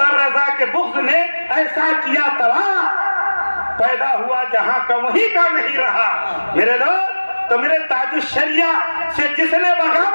रजा के बुग़्ज़ ने ऐसा किया तबाह, पैदा हुआ जहां का वहीं का नहीं रहा। मेरे दोस्त, तो मेरे ताजुश्शरिया से जिसने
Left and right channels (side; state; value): both; inverted; correlation -1.00